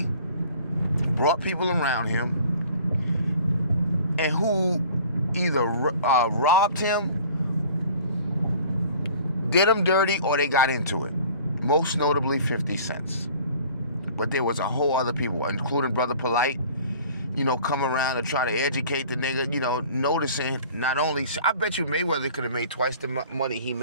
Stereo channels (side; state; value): both; inverted; correlation -0.49